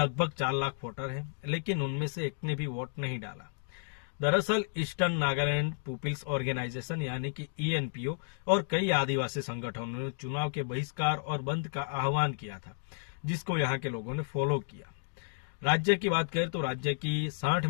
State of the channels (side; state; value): right; silent; digital silence